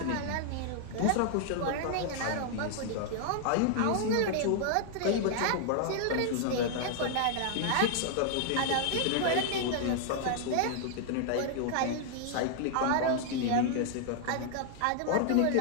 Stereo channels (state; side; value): different; both; correlation -0.01